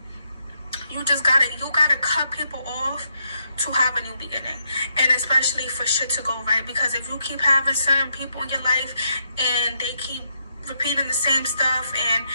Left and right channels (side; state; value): both; inverted; correlation -0.78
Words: you gotta cut people off to have a new beginning, and especially for shit to go right, because if you keep having certain people in your life and they keep repeating the same stuff, and